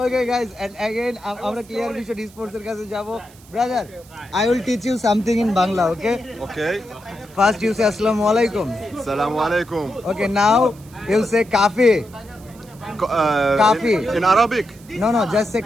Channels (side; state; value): right; noise; hiss, 25 dB below the sound